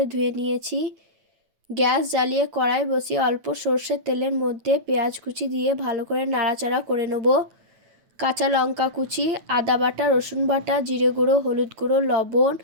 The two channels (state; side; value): late; left; 9.0 ms